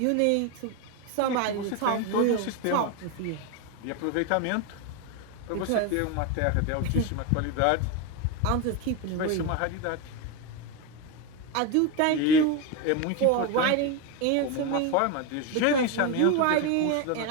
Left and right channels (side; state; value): both; different; correlation 0.03